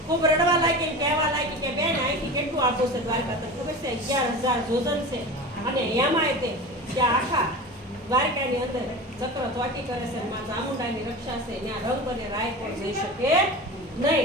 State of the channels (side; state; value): both; normal; correlation 0.31